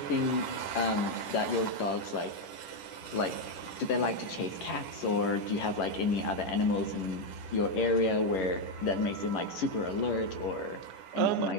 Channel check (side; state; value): right; late; 10 ms